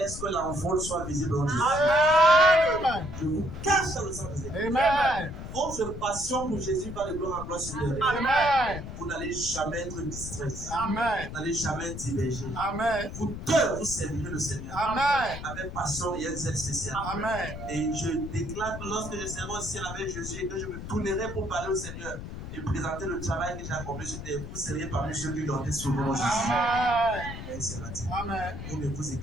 que l'envol soit visible en Jésus. Amen. Je vous cache dans le sang de Jésus. Amen. Votre passion pour Jésus va de gloire en gloire supérieure. Amen. Vous n'allez jamais être distrait. Amen. Vous n'allez jamais être divergé. Amen. Vous deux, vous servirez le Seigneur. Amen. Avec passion et un zèle spécial. Amen. Et je déclare que lorsque je serai au ciel avec Jésus et que je me tournerai pour parler au Seigneur et présenter le travail que j'ai accompli sur terre, vous serez parmi ceux qui ont été sauvés en Jésus. Amen. Amen. Vous ne vous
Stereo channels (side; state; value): left; noise; rumble, 9 dB below the sound